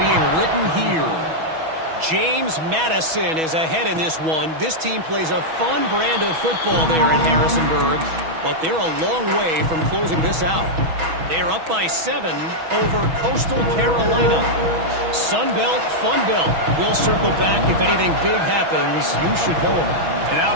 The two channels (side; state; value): left; late; 6.2 ms